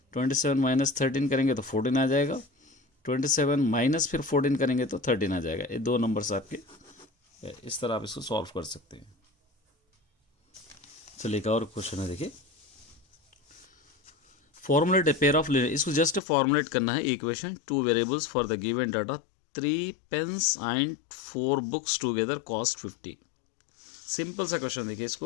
27 माइनस 13 करेंगे तो 14 आ जाएगा, 27 माइनस फिर 14 करेंगे तो 13 आ जाएगा। ये दो नंबर्स आपके, इस तरह आप इसको सॉल्व कर सकते हैं। चलिए एक और क्वेश्चन है, देखिए, formulate a pair of linear, इसको जस्ट फॉर्मुलेट करना है equation, two variables for the given data, 3 pens and 4 books together cost 50। Simple सा क्वेश्चन देखिए,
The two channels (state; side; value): drops out; right; at 16.2 s